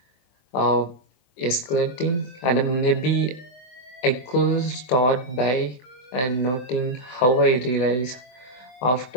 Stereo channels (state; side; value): late; right; 24 ms